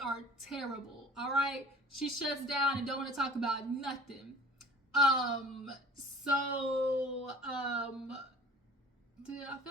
terrible, all right? She shuts down and don't want to talk about nothing. I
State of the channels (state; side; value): normal; both; correlation 0.46